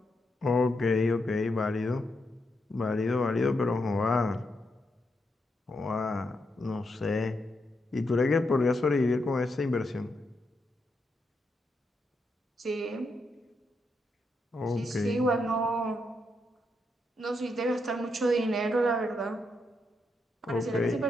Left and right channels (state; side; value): normal; both; correlation 0.82